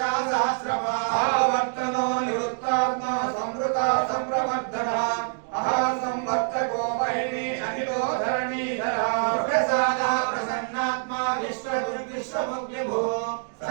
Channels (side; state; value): left; silent; 61 dB below the other